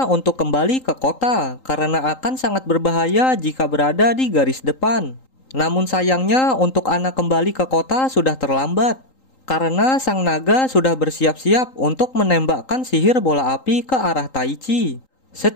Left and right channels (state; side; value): late; right; 3.8 ms